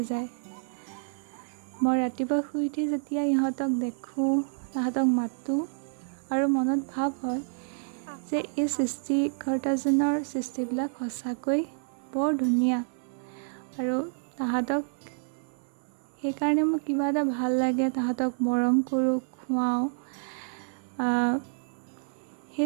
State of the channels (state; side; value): silent; left; 59 dB below the other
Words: যায়। মই ৰাতিপুৱা শুই উঠি যেতিয়া ইহঁতক দেখোঁ, তাহাঁতক মাতোঁ আৰু মনত ভাৱ হয় যে এই সৃষ্টিকৰ্তাজনৰ সৃষ্টিবিলাক সঁচাকৈ বৰ ধুনীয়া আৰু তাহাঁতক সেইকাৰণে মোৰ কিবা এটা ভাল লাগে। তাহাঁতক মৰম কৰোঁ, খুৱাওঁ।